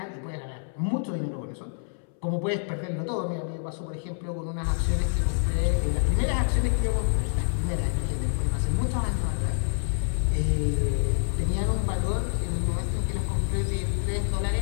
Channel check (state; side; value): silent; right; 60 dB below the other